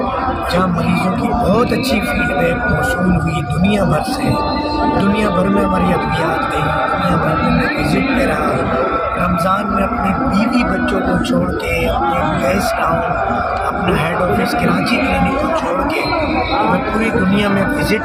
جہاں مریضوں کی بہت اچھی فیڈ بیک موصول ہوئی دنیا بھر سے، دنیا بھر میں ہماری ادویات گئی، دنیا بھر میں میں وزٹ پہ رہا رمضان میں اپنے بیوی بچوں کو چھوڑ کے، اپنے گیس ٹاؤن، اپنا ہیڈ آفس کراچی کلینک کو چھوڑ کے میں پوری دنیا میں وزٹ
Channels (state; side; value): identical; both; correlation 1.00